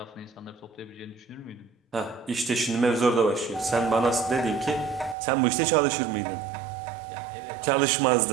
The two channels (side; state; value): left; drops out; at 5.2 s